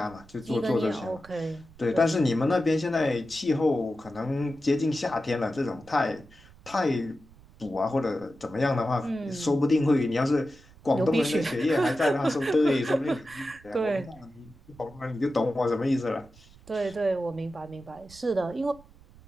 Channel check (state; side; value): noise; right; rumble, 24 dB below the sound